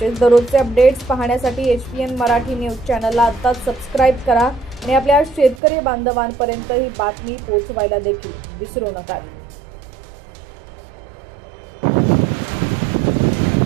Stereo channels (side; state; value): left; drops out; at 5.6 s